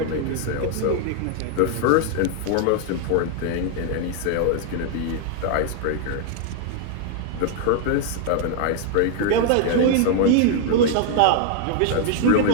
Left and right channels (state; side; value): different; both; correlation 0.00